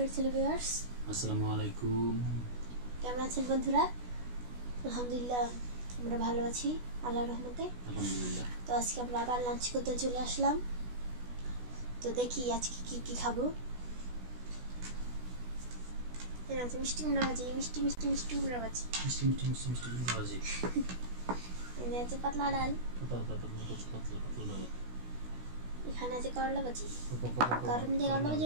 ভিউয়ার্স। আসসালামু আলাইকুম। কেমন আছেন বন্ধুরা? আলহামদুলিল্লাহ আমরা ভালো আছি আল্লাহর রহমতে। আলহামদুলিল্লাহ। তো আজকে আমরা আবার লাঞ্চ করতে চলে আসলাম। তো দেখি আজকে কি খাবো। এর আছে মিষ্টি কুমড়া ভাজি, মিষ্টি কুমড়া ভাজি। মিষ্টি কুমড়া ভাজি। এর আছে পাতলা ডাল। পাতলা। এখানে আছে করলা ভাজি। গরম দিয়ে করলা ভাজি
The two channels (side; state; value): left; late; 16 ms